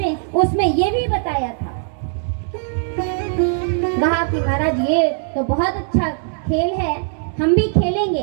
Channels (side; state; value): left; silent; 61 dB below the other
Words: हैं। उसमें ये भी बताया था, कहा कि महाराज ये तो बहुत अच्छा खेल है, हम भी